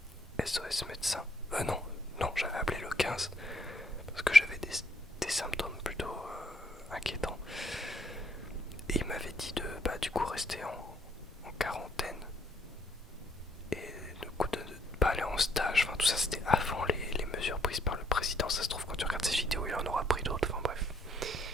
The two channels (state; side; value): normal; both; correlation 0.69